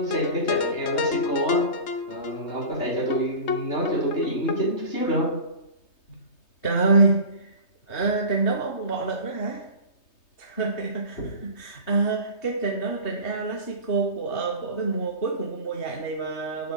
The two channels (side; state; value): right; late; 3.2 ms